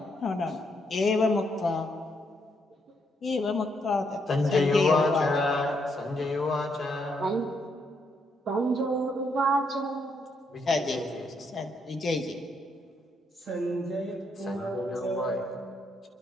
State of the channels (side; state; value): both; normal; correlation 0.76